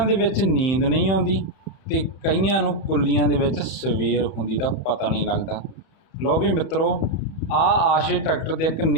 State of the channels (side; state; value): right; late; 31 ms